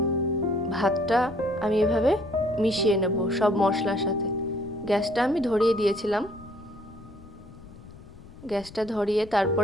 ভাতটা আমি এভাবে মিশিয়ে নেব সব মশলার সাথে। গ্যাসটা আমি ধরিয়ে দিয়েছিলাম। গ্যাসটা ধরিয়ে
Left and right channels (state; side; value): noise; left; rumble, 19 dB below the sound